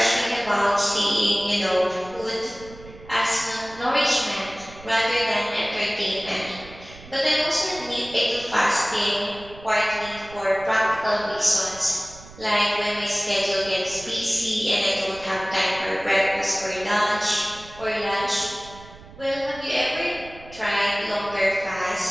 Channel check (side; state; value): right; noise; rumble, 19 dB below the sound